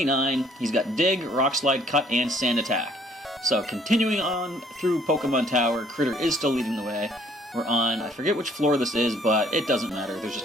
he's got Dig, Rock Slide, Cut, and Sand Attack. So continuing on through Pokemon Tower, Critter is still leading the way. We're on, I forget which floor this is, but it doesn't matter. There's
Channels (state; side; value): normal; both; correlation 0.61